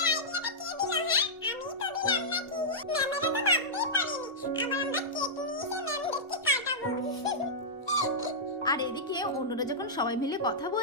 আইডিয়াটা কে দিল? হ্যাঁ, আমি তো দিলাম নাকি? ম্যামেরা তো ভাবতেই পারেনি। আবার আমরা কেক নিয়ে এসে ম্যামদেরকে কাটাবো। আর এদিকে অন্যরা যখন সবাই মিলে কথা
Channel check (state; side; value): normal; both; correlation -0.11